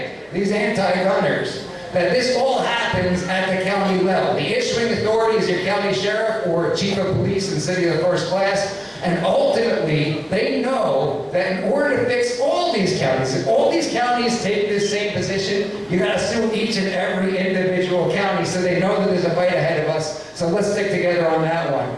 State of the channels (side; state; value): both; identical; correlation 1.00